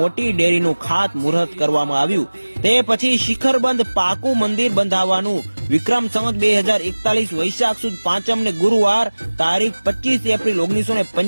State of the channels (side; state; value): both; inverted; correlation -1.00